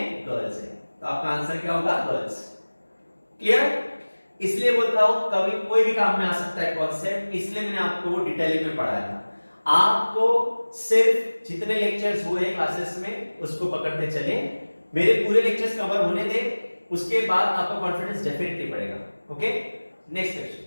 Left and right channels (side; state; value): both; inverted; correlation -1.00